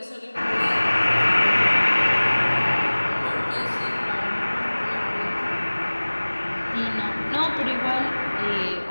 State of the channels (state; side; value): inverted; both; correlation -1.00